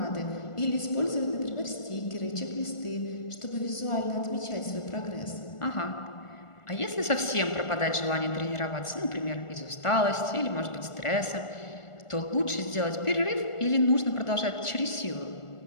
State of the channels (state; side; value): late; right; 1.4 ms